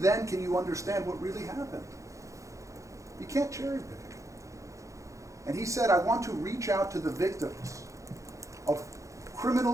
can you understand what really happened. You can't cherry pick. And he said, I want to reach out to the victims of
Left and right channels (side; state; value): left; late; 0.15 ms